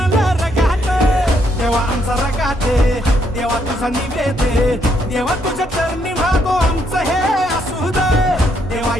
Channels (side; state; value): both; normal; correlation 0.73